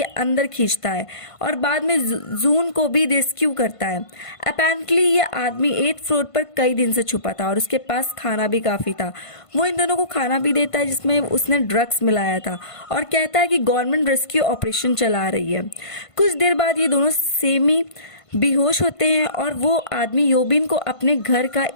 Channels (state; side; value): late; right; 1.5 ms